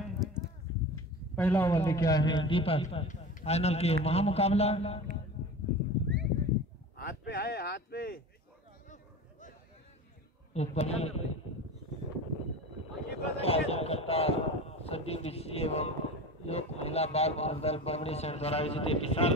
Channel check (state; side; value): normal; both; correlation 0.32